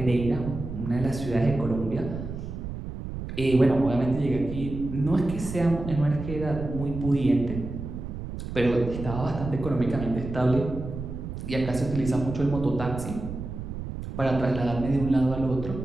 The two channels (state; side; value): noise; right; rumble, 7 dB below the sound